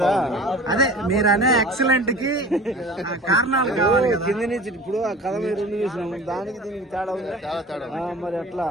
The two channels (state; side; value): normal; both; correlation 0.40